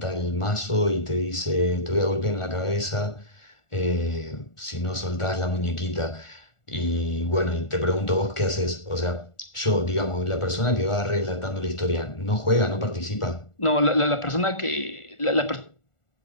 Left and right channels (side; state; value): right; late; 1.4 ms